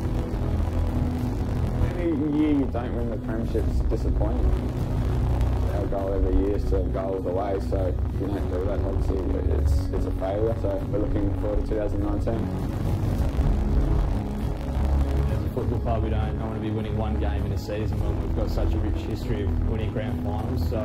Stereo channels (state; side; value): identical; both; correlation 1.00